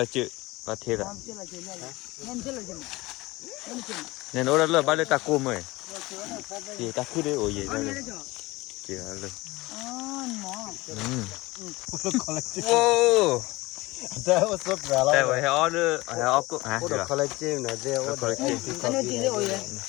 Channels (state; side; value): quieter; right; 21.0 dB